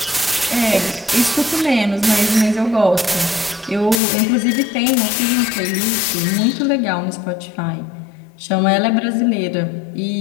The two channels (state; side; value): drops out; right; at 4.0 s